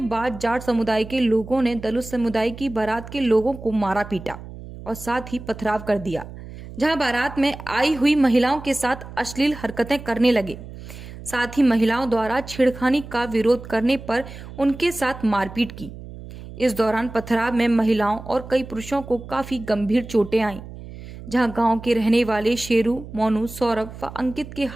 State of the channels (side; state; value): right; noise; hum, 14 dB below the sound